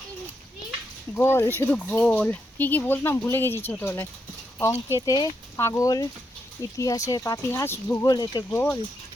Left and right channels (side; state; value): both; normal; correlation 0.81